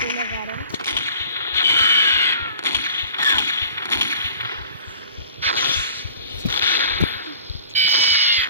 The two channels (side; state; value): both; inverted; correlation -0.47